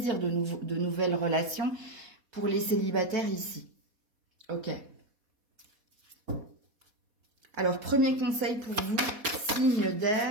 de nouvelles relations pour les célibataires ici. Ok. Alors, premier conseil pour vous, signe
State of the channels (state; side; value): late; left; 4.1 ms